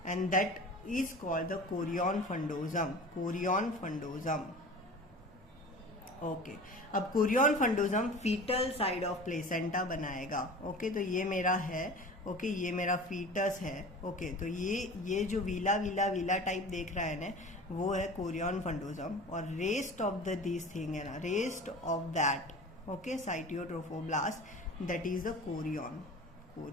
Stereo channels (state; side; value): normal; both; correlation 0.38